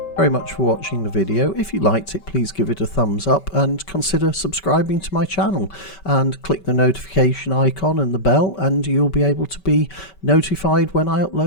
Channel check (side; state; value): right; late; 5.2 ms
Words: very much for watching the video. If you liked it, please give it a thumbs up and consider subscribing to my channel, and click the notification icon and the bell, and you'll be able to be notified when I